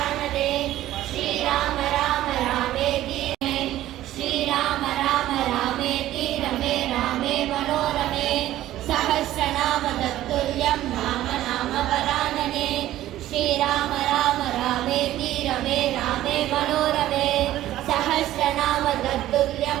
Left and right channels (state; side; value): quieter; left; 14.1 dB